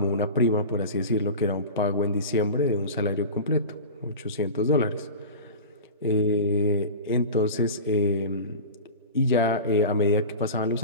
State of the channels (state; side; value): inverted; both; correlation -0.32